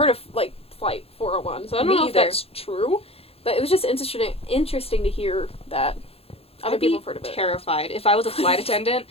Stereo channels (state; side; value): late; right; 0.28 ms